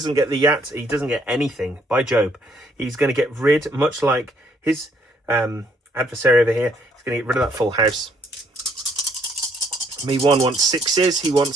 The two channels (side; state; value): both; normal; correlation 0.67